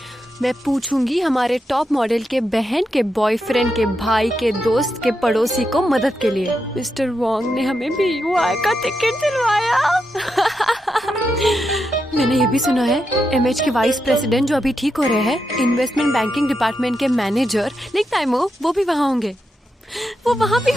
मैं पूछूंगी हमारे टॉप मॉडल के बहन के बॉयफ्रेंड के भाई के दोस्त के पड़ोसी को मदद के लिए। मिस्टर वॉन्ग ने हमें BUI का टिकट दिलवाया। मैंने ये भी सुना है एमएच के वाइस प्रेसिडेंट जो अभी ठीक हो रहे हैं, इन्वेस्टमेंट बैंकिंग डिपार्टमेंट के मैनेजर लिंक टाइमो, वो भी वहाँ होंगे। वो वहाँ भी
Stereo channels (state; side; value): normal; both; correlation 0.85